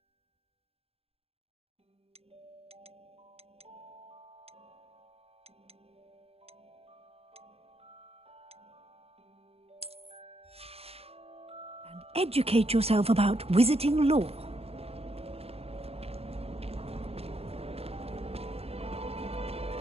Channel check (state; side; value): late; left; 0.29 ms